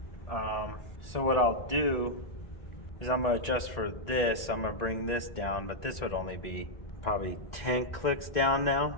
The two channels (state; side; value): late; right; 1.6 ms